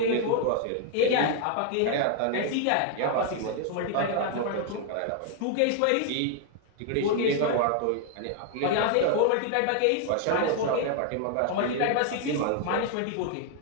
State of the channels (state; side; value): different; both; correlation 0.00